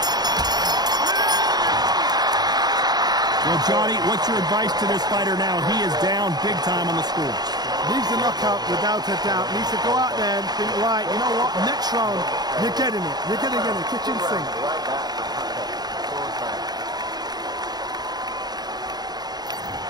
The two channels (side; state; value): left; late; 0.19 ms